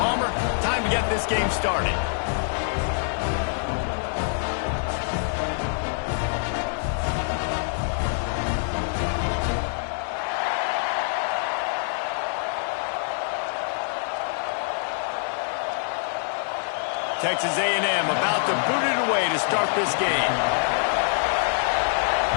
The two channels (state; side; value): silent; right; 62 dB below the other